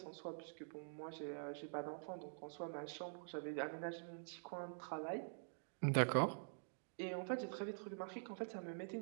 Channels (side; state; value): left; silent; digital silence